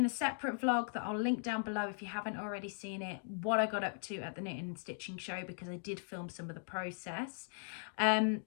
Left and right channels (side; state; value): right; silent; digital silence